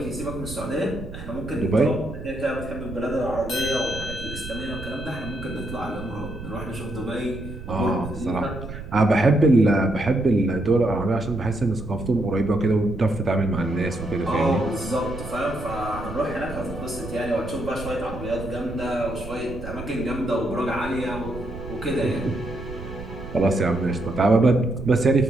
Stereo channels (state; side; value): noise; right; rumble, 11 dB below the sound